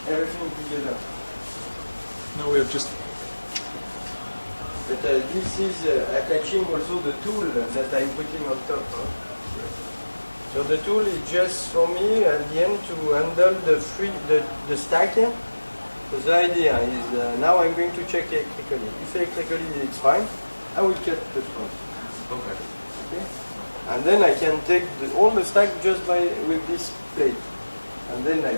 everything together. Now we have just. But this is attaching also the tool that I'm putting on top. Huh? So the tool is just for me at the end to handle the stack. So the idea is now I'm going to check electrically. If electrically it's fine, I will cut the front. Okay. And then I can take all the stack just with this plate. And then I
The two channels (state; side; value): inverted; both; correlation -1.00